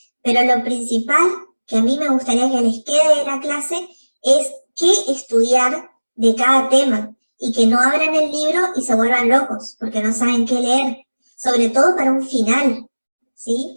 Pero lo principal que a mí me gustaría que les quede de la clase es qué estudiar de cada tema y que no abran el libro y se vuelvan locos porque no saben qué leer, sobre todo para un final,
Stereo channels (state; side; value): inverted; both; correlation -1.00